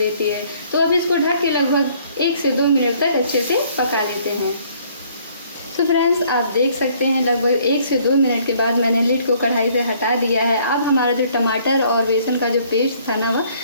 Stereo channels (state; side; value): inverted; both; correlation -0.61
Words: है। तो अब इसको ढक के लगभग 1 से 2 मिनट तक अच्छे से पका लेते हैं। तो फ्रेंड्स, आप देख सकते हैं लगभग 1 से 2 मिनट के बाद मैंने लिड को कढ़ाई से हटा दिया है। अब हमारा जो टमाटर और बेसन का जो पेस्ट था ना